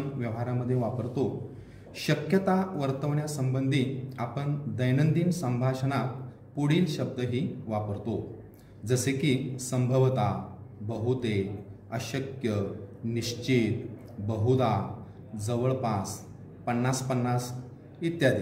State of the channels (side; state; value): both; identical; correlation 1.00